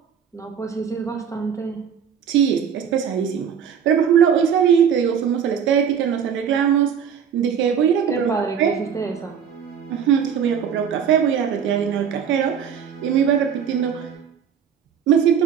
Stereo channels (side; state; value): left; quieter; 7.8 dB